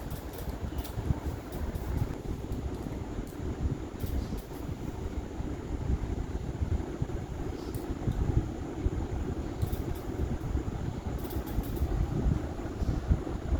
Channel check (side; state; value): both; identical; correlation 1.00